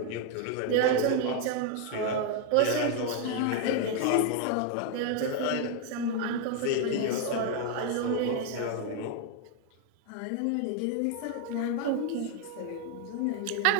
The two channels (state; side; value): different; both; correlation 0.01